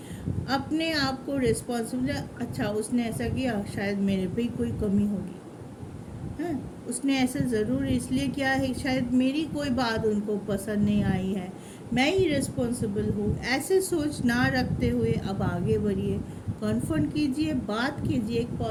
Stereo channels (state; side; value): identical; both; correlation 1.00